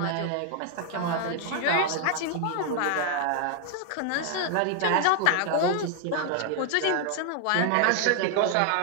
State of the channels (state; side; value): different; both; correlation 0.00